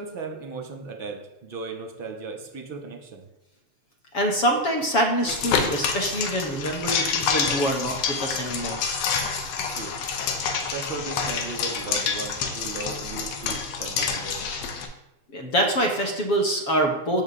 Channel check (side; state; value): right; late; 7.2 ms